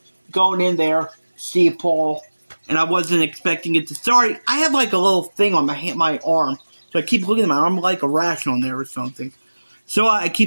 see Paul, and I wasn't expecting it to. Sorry, I have like a little thing on my arm. So I keep looking at my arm like a rash on there or something. So I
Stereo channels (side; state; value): both; inverted; correlation -1.00